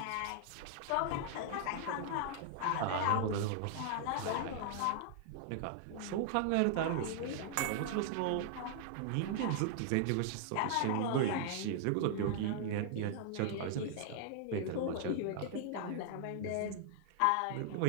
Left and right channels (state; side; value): different; both; correlation -0.01